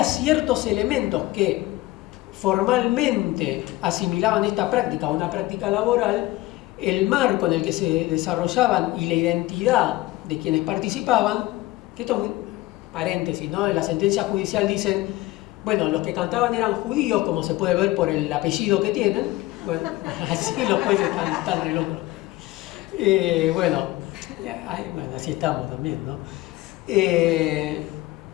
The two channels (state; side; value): quieter; right; 18.4 dB